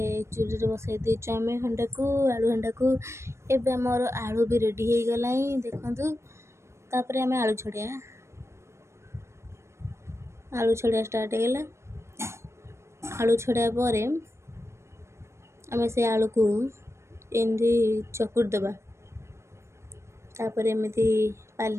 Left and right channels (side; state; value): left; late; 0.13 ms